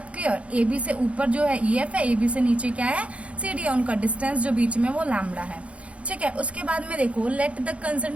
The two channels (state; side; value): late; left; 0.063 ms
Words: क्लियर। ए बी से ऊपर जो है ई एफ है, ए बी से नीचे क्या है, सी डी है, उनका डिस्टेंस जो बीच में वो लैम्डा है। ठीक है, उसके बाद में देखो, let the